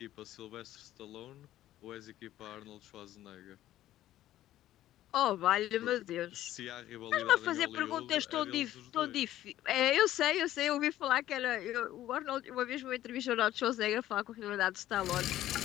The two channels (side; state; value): right; quieter; 13.6 dB